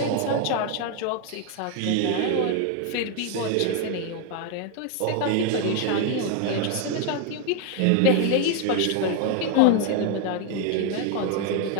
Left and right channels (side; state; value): both; different; correlation 0.01